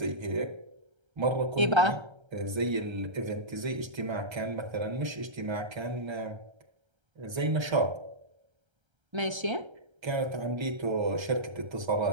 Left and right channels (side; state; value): left; late; 1.3 ms